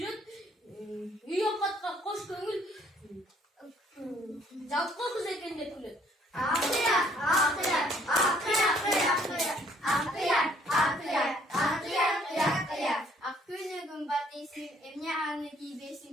Üye katka koş köngül. Jalka kız ekende külüt. Akıya. Akgünü gün batıysın, emne anı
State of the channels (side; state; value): both; normal; correlation 0.63